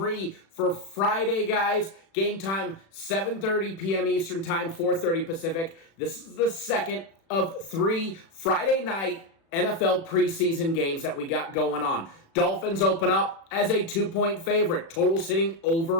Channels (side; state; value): right; late; 36 ms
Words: for Friday, guys. Game time, 7:30 p.m. Eastern time, 4:30 Pacific. This is the second of 3 Friday night NFL preseason games that we got going on. Dolphins open up as a 2-point favorite, total sitting